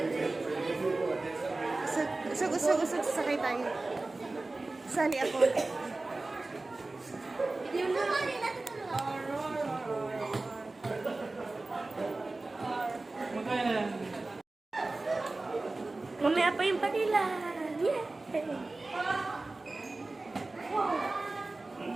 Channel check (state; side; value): quieter; left; 3.2 dB